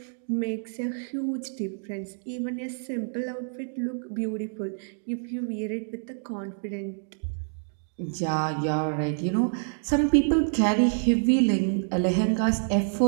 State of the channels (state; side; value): silent; left; digital silence